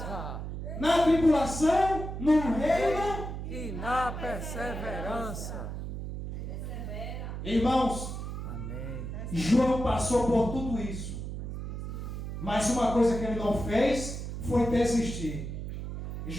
Na tribulação, no reino. E na perseverança. Irmãos, Amém. João passou por tudo isso. Mas uma coisa que ele não fez foi desistir.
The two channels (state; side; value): noise; right; hum, 6 dB below the sound